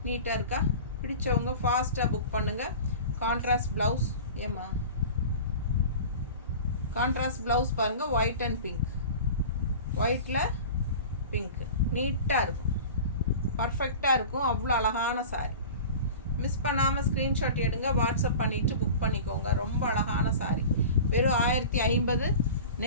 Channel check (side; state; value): both; inverted; correlation -0.36